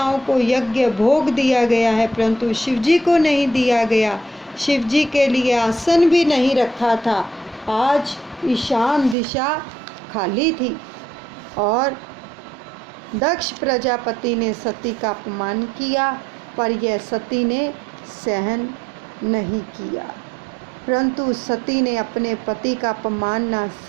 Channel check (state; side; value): drops out; left; at 9.2 s